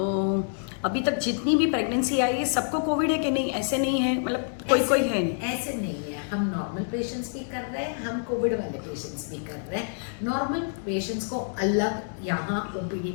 अभी तक जितनी भी प्रेगनेंसी आई है सबको कोविड है कि नहीं, ऐसे नहीं है, मतलब कोई कोई है नहीं? ऐसे नहीं है, हम नॉर्मल पेशेंट्स भी कर रहे हैं, हम कोविड वाले पेशेंट्स भी कर रहे हैं। नॉर्मल पेशेंट्स को अलग यहाँ ओपीडी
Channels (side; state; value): right; silent; digital silence